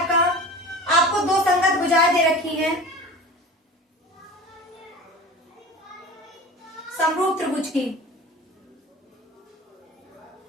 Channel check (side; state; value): both; normal; correlation 0.36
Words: आपको 2 संगत भुजाएं दे रखी है समरूप त्रिभुज की।